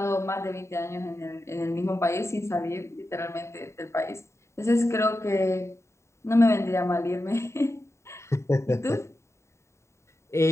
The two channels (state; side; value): late; right; 0.14 ms